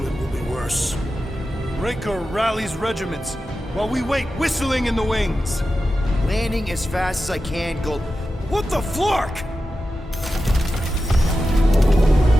it will be worse. Raker rallies regiments while we wait whistling in the wings. Landing as fast as I can, Gold. What the flark?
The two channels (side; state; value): both; normal; correlation 0.92